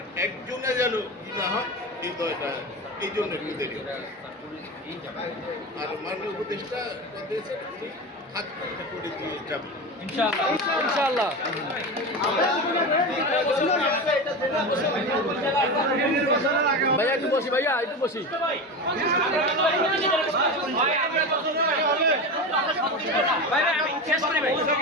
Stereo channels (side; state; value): both; normal; correlation 0.23